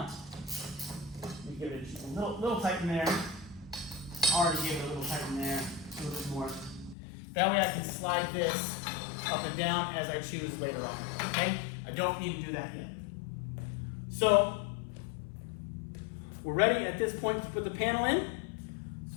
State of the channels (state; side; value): drops out; right; at 7.0 s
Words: You give it just a little tight in there. Already gave it a little tight in there. A little bit more. That way I can slide this up and down as I choose later on. Okay? I don't need to do that yet. So we're ready at this point to put the panel in.